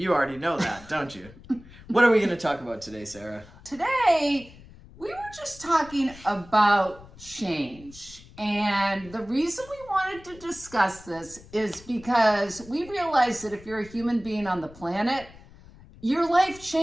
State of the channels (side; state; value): left; noise; rumble, 21 dB below the sound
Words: already know that, don't you? What are we going to talk about today, Sarah? Today, we were just talking about change. And the reason we wanted to discuss this is because we realize that if you're a human being on the planet, your life